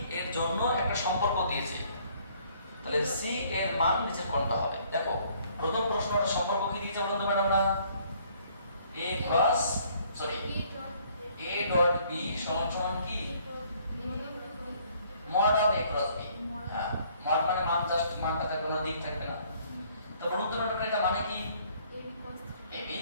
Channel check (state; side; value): inverted; both; correlation -0.62